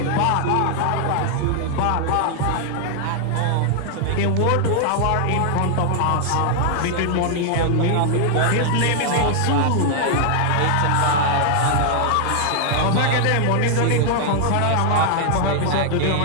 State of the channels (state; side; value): different; both; correlation 0.00